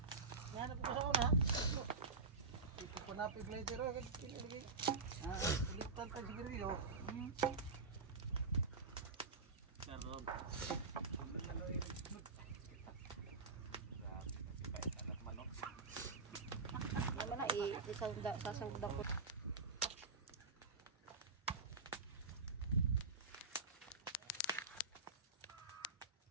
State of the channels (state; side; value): quieter; left; 4.1 dB